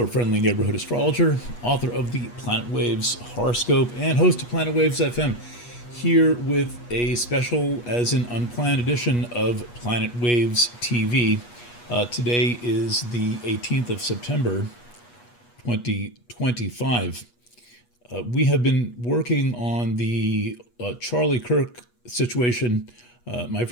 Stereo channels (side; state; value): right; late; 8.3 ms